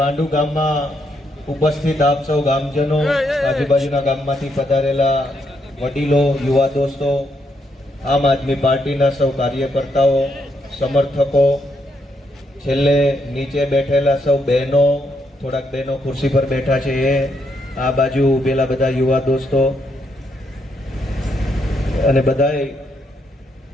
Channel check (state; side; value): normal; both; correlation 0.77